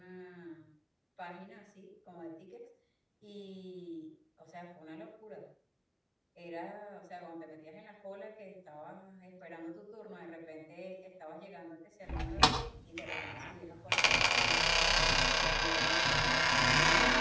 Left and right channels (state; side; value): identical; both; correlation 1.00